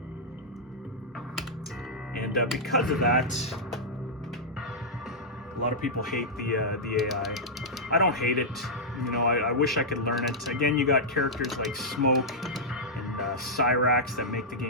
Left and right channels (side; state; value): both; normal; correlation -0.09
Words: And because of that, a lot of people hate the AI. I don't hate it. You know, I wish I could learn it. Again, you got characters like Smoke and Cyrax that make the